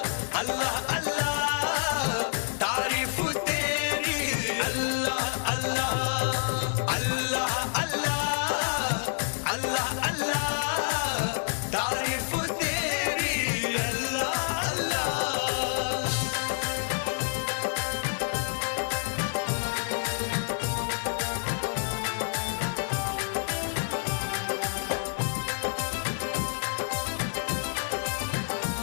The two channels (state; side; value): silent; right; 55 dB below the other